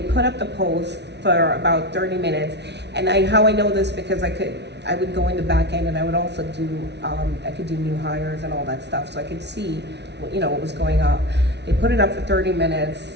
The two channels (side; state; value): left; late; 0.50 ms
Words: the post for about 30 minutes, and how I know this because I would go in the back end, and I would also do I could do new hires and all that stuff, so I could see what was going on. They put it up for 30 minutes.